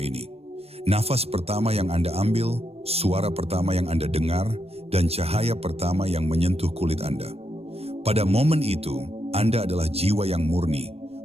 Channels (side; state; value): left; late; 0.29 ms